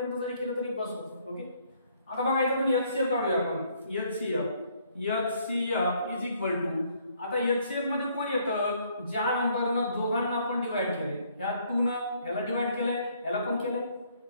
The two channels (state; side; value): inverted; both; correlation -0.66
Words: जरी केलं तरी बस होतं. ओके, आता बघा इथं आपण एचसीएफ काढूया आपण. एचसीएफ इज इक्वल टू, आता एचसीएफ मध्ये कोण येतं, ज्या नंबरनं दोघांना आपण डिवाइड केले. ह्या 2 न ह्याला डिवाइड केलंय, ह्याला पण केलंय,